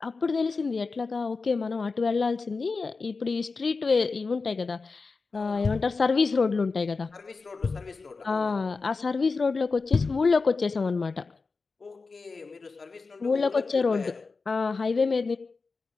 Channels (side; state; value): right; quieter; 4.3 dB